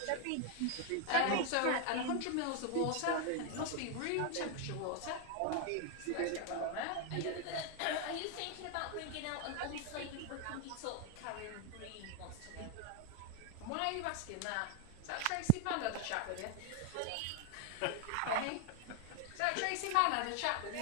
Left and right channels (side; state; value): both; different; correlation 0.00